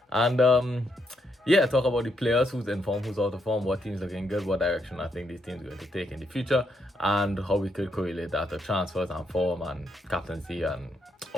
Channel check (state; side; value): normal; both; correlation 0.77